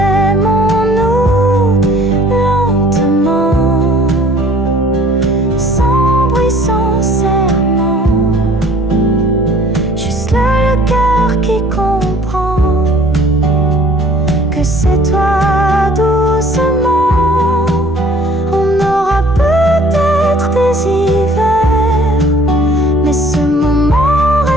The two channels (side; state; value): both; normal; correlation 0.54